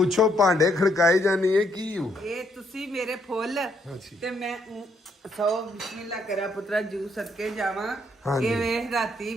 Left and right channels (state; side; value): normal; both; correlation 0.72